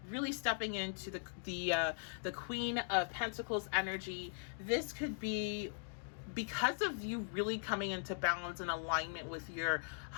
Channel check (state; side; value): silent; right; digital silence